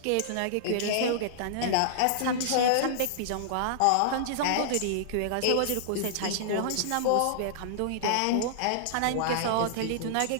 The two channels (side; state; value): both; different; correlation -0.01